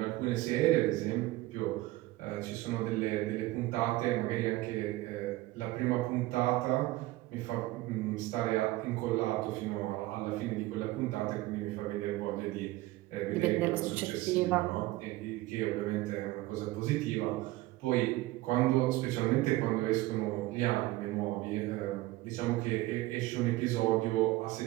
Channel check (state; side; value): quieter; left; 18.2 dB